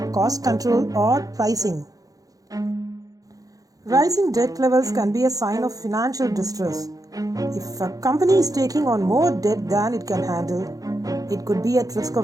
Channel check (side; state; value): left; late; 0.17 ms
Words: cost control or pricing. Rising debt levels can be a sign of financial distress. If a company is taking on more debt than it can handle, it could be at risk